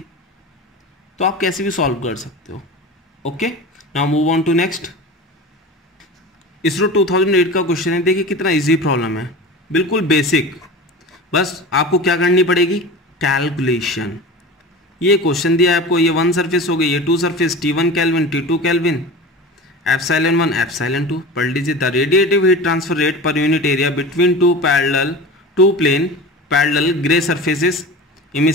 तो आप कैसे भी सॉल्व कर सकते हो। Okay, now move on to next. ISRO 2008 का क्वेश्चन है, देखिए कितना इजी प्रॉब्लम है, बिल्कुल बेसिक। बस आपको क्या करनी पड़ेगी, कैलकुलेशन। ये क्वेश्चन दिया है आपको, ये 1 सरफेस हो गई, ये 2 surface, T1 kelvin, T2 kelvin, ε1 ε2। पढ़ लीजिए, the radiative heat transfer rate per unit area between two plane parallel grey surfaces,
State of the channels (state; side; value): normal; both; correlation 0.33